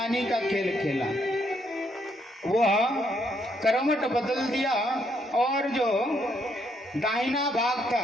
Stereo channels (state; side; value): normal; both; correlation 0.73